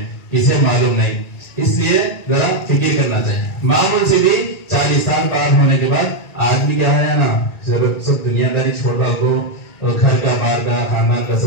کسے معلوم نہیں۔ اس لیے ذرا فکر کرنا چاہیے۔ معمول سے بھی 40 سال پار ہونے کے بعد آدمی کیا ہے نا، سب دنیا داری چھوڑ ڈال کو، گھر کا، بار کا، خاندان کا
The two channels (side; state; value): right; late; 1.9 ms